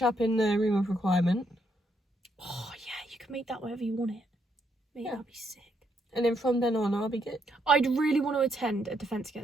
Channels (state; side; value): normal; both; correlation 0.75